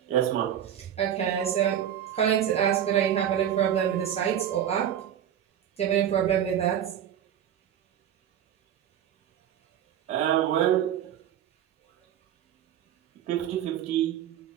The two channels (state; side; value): quieter; left; 10.1 dB